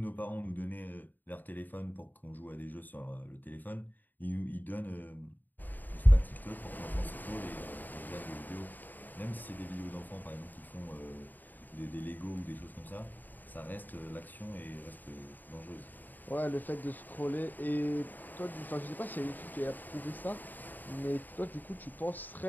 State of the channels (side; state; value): right; late; 0.088 ms